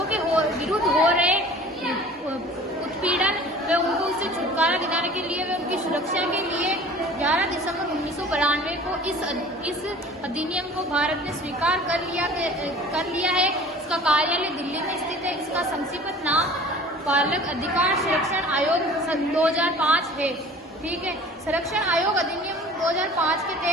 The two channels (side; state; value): both; normal; correlation 0.45